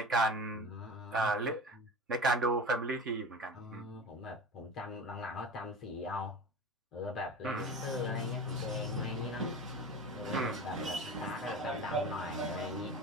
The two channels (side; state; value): both; normal; correlation 0.33